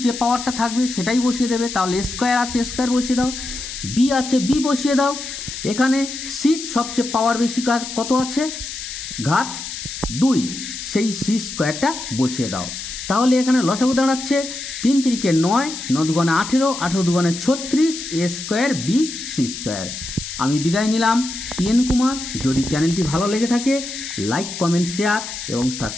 যে পাওয়ারটা থাকবে সেটাই বসিয়ে দেবে। তাহলে স্কোয়ার আছে, স্কোয়ার বসিয়ে দাও। বি আছে, বি বসিয়ে দাও। এখানে সির সবচেয়ে পাওয়ার বেশি কত আছে, ঘাত 2, সেই সি স্কোয়ারটা বসিয়ে দাও। তাহলে এখানে লসাগু দাঁড়াচ্ছে 3 × 3 = 9, 9 × 2 = 18, 18 × 2 = 36, a square b c square. আমি বিদায় নিলাম, পিএন কুমার। যদি চ্যানেলটি ভালো লেগে থাকে লাইক, কমেন্ট, শেয়ার এবং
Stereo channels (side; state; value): left; noise; hiss, 8 dB below the sound